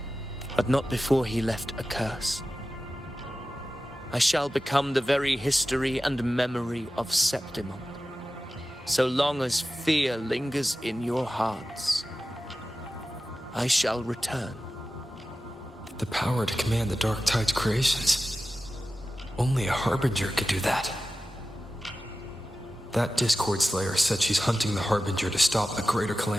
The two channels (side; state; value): both; normal; correlation 0.94